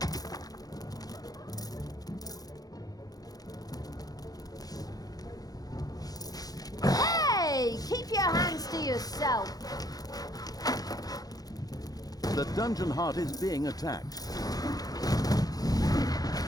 Hey! Keep your hands to yourself. The dungeon heart is being attacked.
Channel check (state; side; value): late; right; 0.18 ms